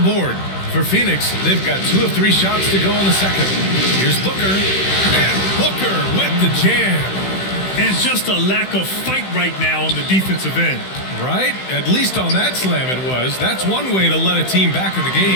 For Phoenix, they've got 2 of 3 shots to go in the second. Here's Booker. And Booker with the jam. And just a lack of fight right now on the defensive end. Right? At least on that slam it was. That's one way to let a team back in the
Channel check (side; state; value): right; late; 16 ms